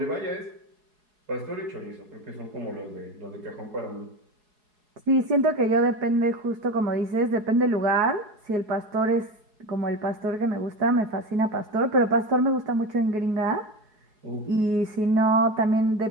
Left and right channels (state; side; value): late; left; 4.7 ms